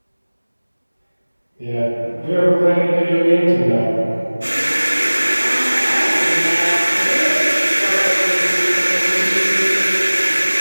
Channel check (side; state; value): both; inverted; correlation -1.00